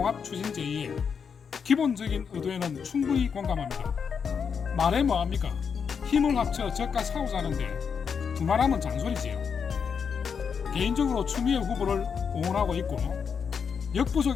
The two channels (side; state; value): right; quieter; 6.5 dB